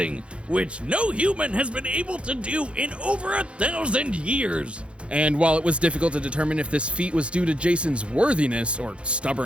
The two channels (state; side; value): late; left; 0.059 ms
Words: which no human has been able to do in over 1,000 years. And while it was difficult to determine if this feat was due to Jason's worthiness or